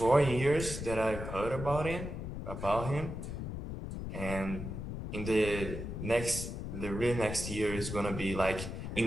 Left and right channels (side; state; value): left; noise; rumble, 6 dB below the sound